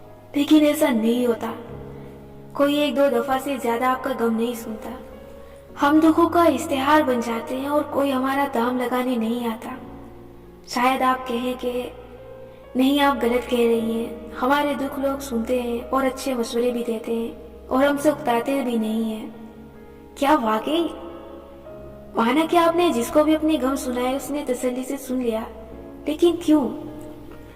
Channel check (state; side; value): identical; both; correlation 1.00